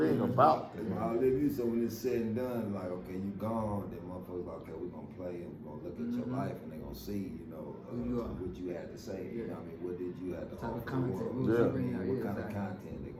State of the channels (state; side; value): identical; both; correlation 1.00